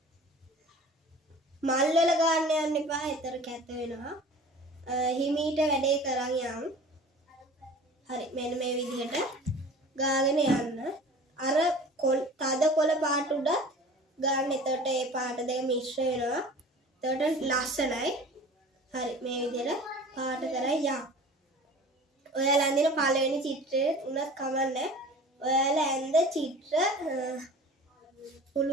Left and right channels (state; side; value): normal; both; correlation 0.42